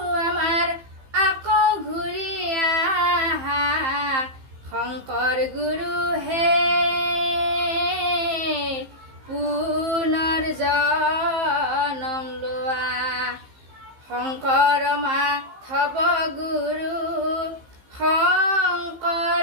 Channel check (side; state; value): left; late; 15 ms